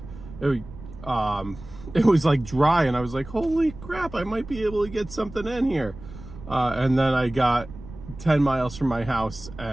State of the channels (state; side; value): noise; right; rumble, 15 dB below the sound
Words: it was like dry, and I was like, holy crap, I might be able to get something in here. And then I got 10 miles from my house,